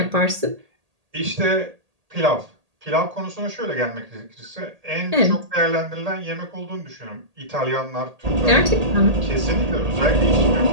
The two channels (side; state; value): left; late; 1.8 ms